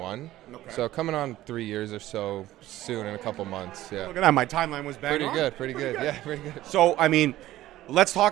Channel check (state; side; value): quieter; left; 15.1 dB